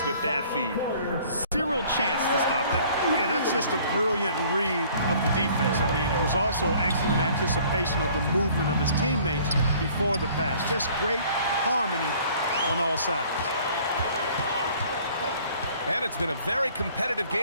with that feed. Zero chance to stop that. Yeah, that's just a brilliant read of the defense. I mean, it was also excellent anticipation of the movement of his teammates before the pass. Just great harmony on all sides. And it's been a very competitive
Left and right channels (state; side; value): inverted; both; correlation -0.54